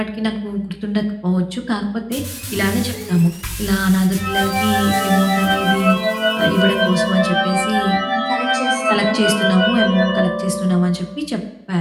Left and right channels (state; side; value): identical; both; correlation 1.00